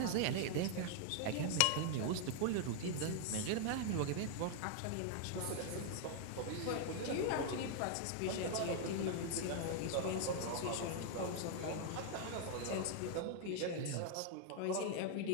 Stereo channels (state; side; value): different; both; correlation 0.00